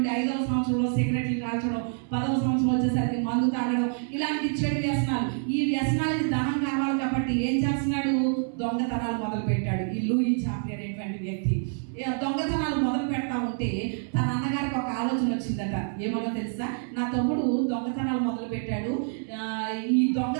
5వ సంవత్సరంలో సిగరెట్లు కాల్చడం, 10వ సంవత్సరం వచ్చేసరికి మందు తాగడం, ఇలాంటి చెడు వ్యసనాలు. ఈ వ్యసనాలకి ధనం కావాలి కాబట్టి ఏం చేస్తున్నాడు? దొంగతనాలు మొదలు పెట్టాడు. ఈ లూయి చాప్రీ అనేటువంటి వ్యక్తి దొంగతనాలు మొదలు పెడతా ఉంటే తన అన్నగారికి ఒక ఆలోచన వచ్చిందట. ఏమో తెలుసా? నా తమ్ముడు దొంగతనాలు మొదలు పెట్టాడు, ఈ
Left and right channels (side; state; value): left; silent; 60 dB below the other